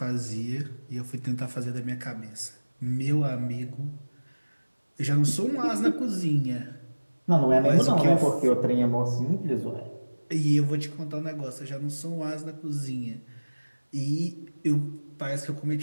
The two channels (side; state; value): both; inverted; correlation -1.00